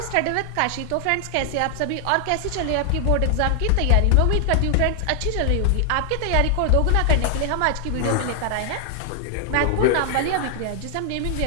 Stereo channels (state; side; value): different; both; correlation 0.00